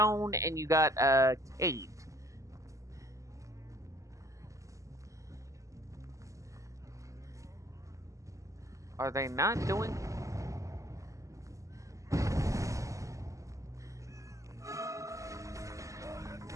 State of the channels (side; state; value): left; late; 0.16 ms